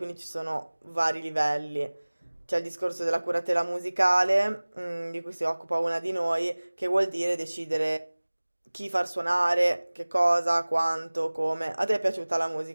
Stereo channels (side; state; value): both; inverted; correlation -1.00